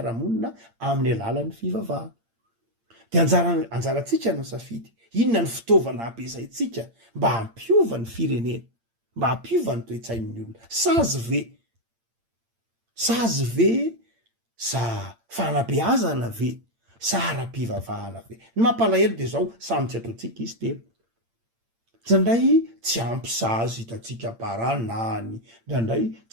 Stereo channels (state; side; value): late; left; 8.8 ms